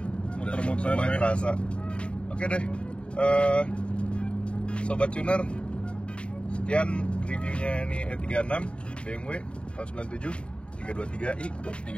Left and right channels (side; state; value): right; late; 0.056 ms